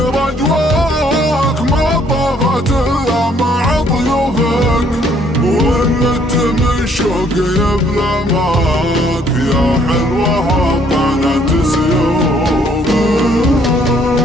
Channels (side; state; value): both; normal; correlation 0.64